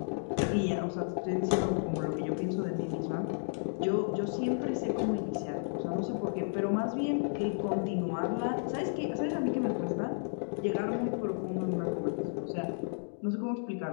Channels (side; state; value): right; silent; digital silence